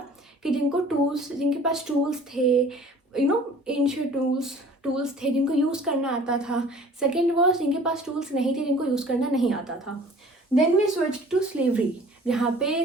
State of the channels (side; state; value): both; normal; correlation 0.49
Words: कि जिनके पास टूल्स थे, एंशियंट टूल्स थे जिनको यूज़ करना आता था। सेकेंड वॉज जिनके पास टूल्स नहीं थे, जिनको यूज़ करना नहीं आता था। Then we switch to slavery, जहाँ